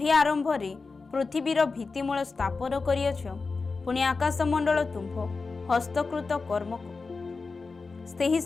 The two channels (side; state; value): right; quieter; 4.2 dB